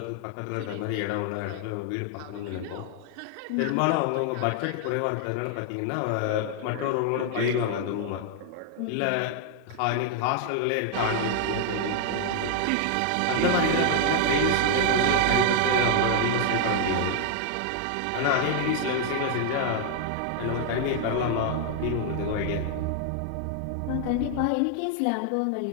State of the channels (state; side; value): different; both; correlation 0.00